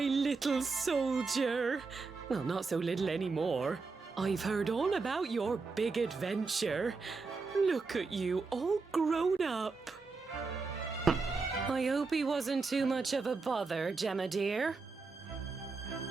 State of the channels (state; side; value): quieter; left; 4.3 dB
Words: soldier. Well, not so little anymore. I've heard all about your big adventure. Look at you, all grown up. I hope he wasn't too much of a bother, Gemma dear.